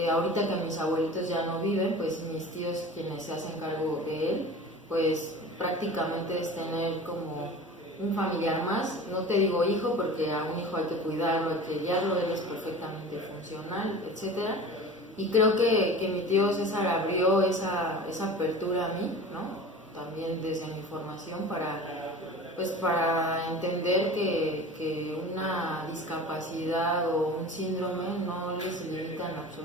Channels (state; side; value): normal; both; correlation 0.37